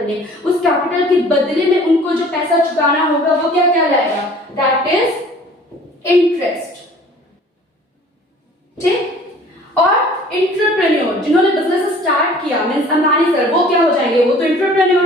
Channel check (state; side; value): normal; both; correlation 0.50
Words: ले, उस कैपिटल के बदले में उनको जो पैसा चुकाना होगा वो क्या कहलाएगा, दैट इज इंटरेस्ट। ठीक, और एंटरप्रेन्योर जिन्होंने बिजनेस स्टार्ट किया मींस अंबानी सर, वो क्या हो जाएंगे, वो तो